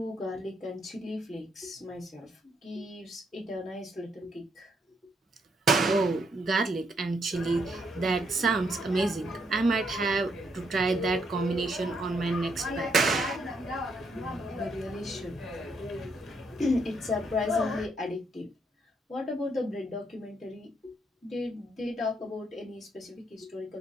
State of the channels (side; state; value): both; normal; correlation 0.75